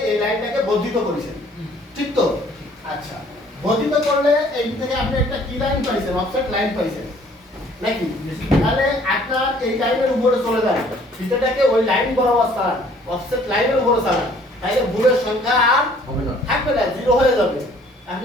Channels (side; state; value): both; normal; correlation 0.58